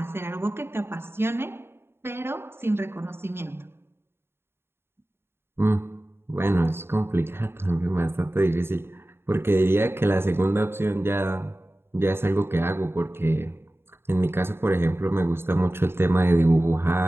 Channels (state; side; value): late; left; 0.11 ms